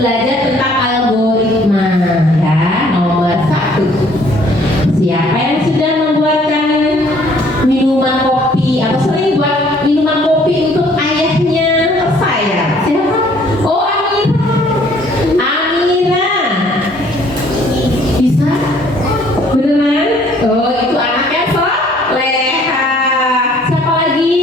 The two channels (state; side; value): normal; both; correlation 0.60